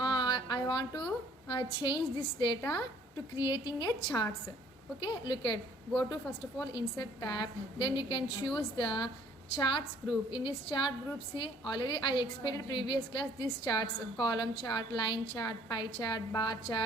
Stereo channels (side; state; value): both; normal; correlation 0.58